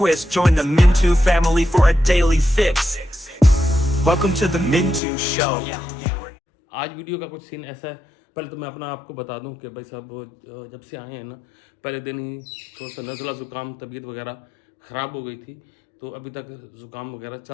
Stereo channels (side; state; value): right; drops out; at 5.0 s